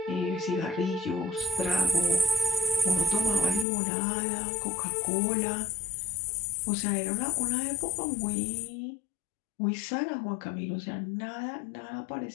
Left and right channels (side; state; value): right; drops out; at 3.7 s